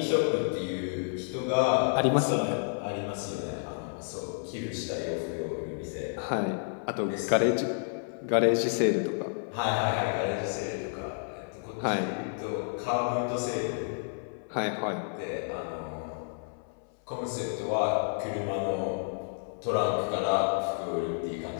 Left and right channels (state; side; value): silent; right; 58 dB below the other